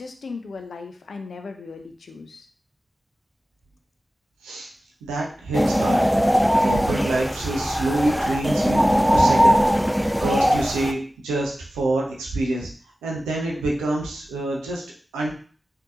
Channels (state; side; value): normal; both; correlation 0.95